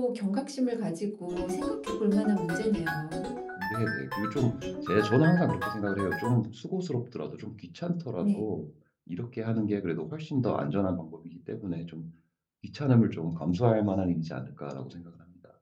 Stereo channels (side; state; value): both; identical; correlation 1.00